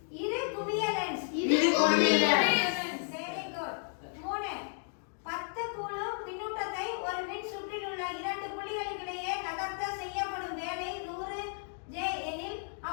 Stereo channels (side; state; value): right; silent; 56 dB below the other